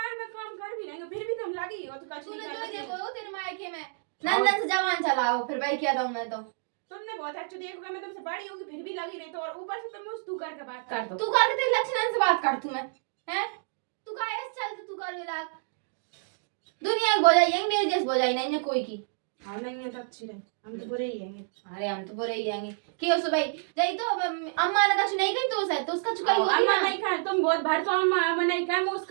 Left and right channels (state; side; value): silent; left; digital silence